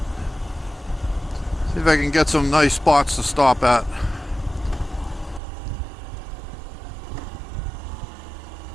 see if I can get some nice spots to stop at.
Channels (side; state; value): left; drops out; at 5.4 s